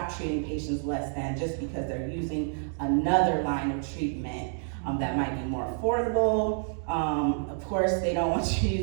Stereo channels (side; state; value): left; silent; digital silence